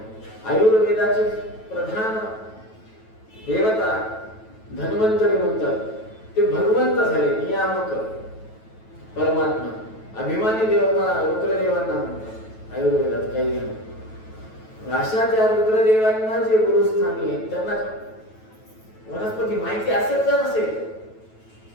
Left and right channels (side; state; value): right; late; 9.2 ms